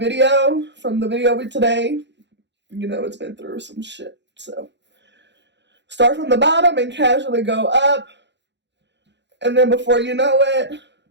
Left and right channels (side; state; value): left; late; 0.52 ms